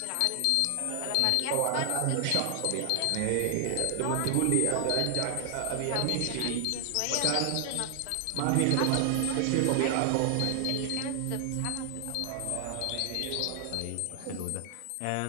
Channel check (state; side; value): different; both; correlation 0.00